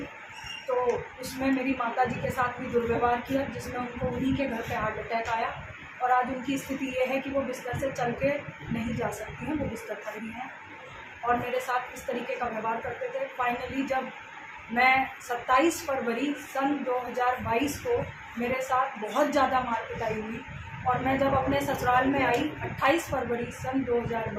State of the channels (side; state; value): both; identical; correlation 1.00